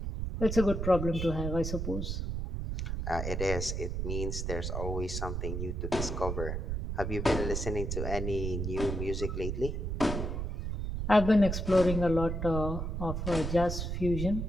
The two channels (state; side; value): noise; right; rumble, 3 dB below the sound